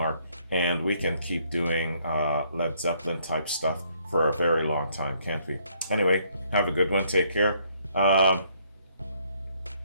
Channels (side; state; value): both; inverted; correlation -0.68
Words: And we can keep doing Led Zeppelin type stuff for a very long time, can't we? Anyway, have a good one. Take care.